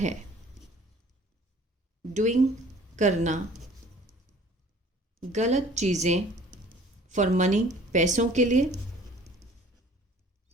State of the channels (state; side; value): normal; both; correlation 0.51